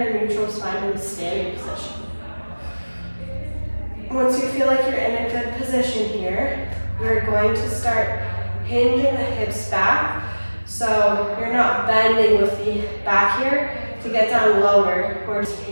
neutral spine in the standing position. Once you feel like you're in a good position here, we're going to start hinging the hips back. So you're not bending with the back here to get down lower. We're just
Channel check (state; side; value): inverted; both; correlation -1.00